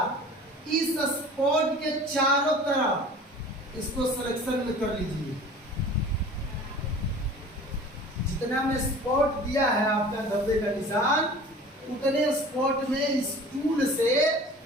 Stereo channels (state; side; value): normal; both; correlation 0.43